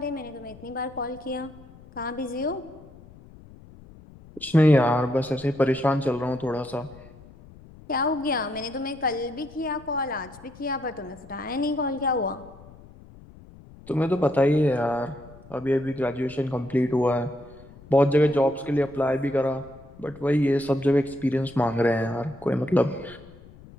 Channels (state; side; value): noise; left; rumble, 21 dB below the sound